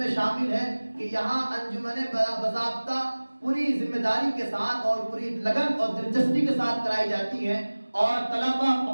شامل ہے کہ یہاں انجمن باضابطہ پوری ذمہ داری کے ساتھ اور پوری لگن اور دلچسپی کے ساتھ کرائی جاتی ہیں، اور طلبہ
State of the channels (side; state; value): both; inverted; correlation -1.00